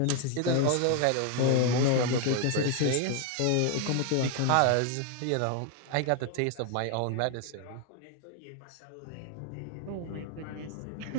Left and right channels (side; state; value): both; different; correlation 0.01